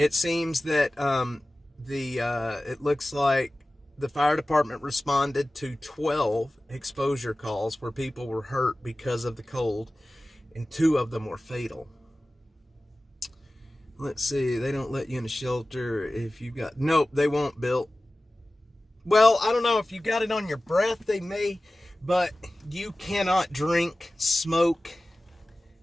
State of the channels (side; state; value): both; normal; correlation 0.96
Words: seems that it looks like the fire department responded to 12 exposure calls where people were hurt because of the cold, and 2 of them were fatal. Let's see, they don't let you in a shelter if you got, nope, they won't, Bill. Well, I don't know, if you got it on your breath, they may, but you cannot drink, smoke,